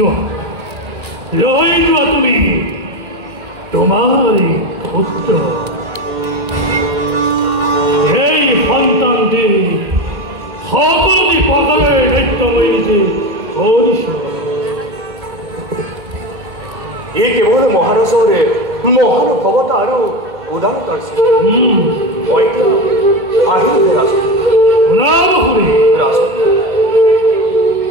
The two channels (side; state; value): left; late; 2.1 ms